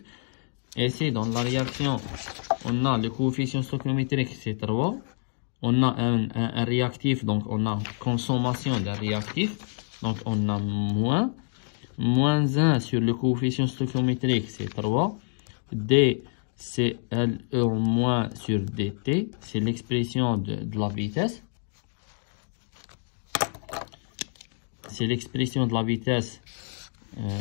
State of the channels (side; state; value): right; silent; 60 dB below the other